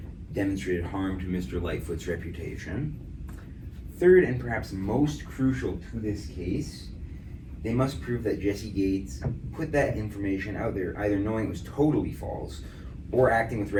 demonstrated harm to Mr. Lightfoot's reputation. Third, and perhaps most crucial to this case, they must prove that Jesse Gates put that information out there either knowing it was totally false or acting with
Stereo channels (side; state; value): both; identical; correlation 1.00